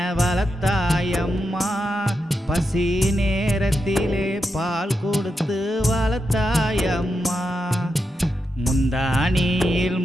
வளர்த்தாயம்மா, பசி நேரத்திலே பால் கொடுத்து வளர்த்தாயம்மா, முந்தானியில்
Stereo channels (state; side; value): normal; both; correlation 0.86